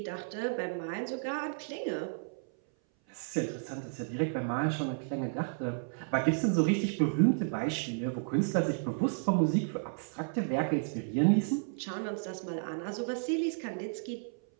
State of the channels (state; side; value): silent; left; 56 dB below the other